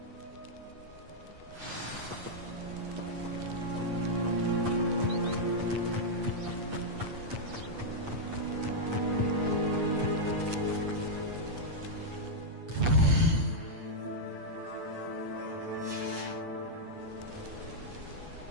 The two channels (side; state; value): left; late; 8.5 ms